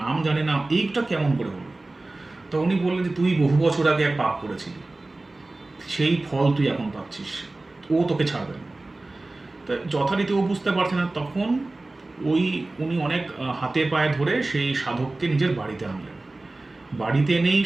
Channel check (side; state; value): left; quieter; 3.0 dB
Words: নাম জানে না, এইটা কেমন করে হলো। তো উনি বললেন যে তুই বহু বছর আগে এক পাপ করেছিলি, সেই ফল তুই এখন পাচ্ছিস, ও তোকে ছাড়বে না। তো যথারীতি ও বুঝতে পারছে না, তখন উনি অনেক হাতে পায়ে ধরে সেই সাধককে নিজের বাড়িতে আনলেন। বাড়িতে এনেই